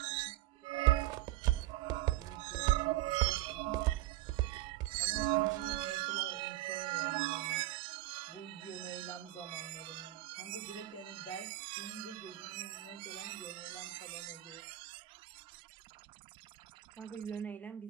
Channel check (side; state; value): left; quieter; 15.8 dB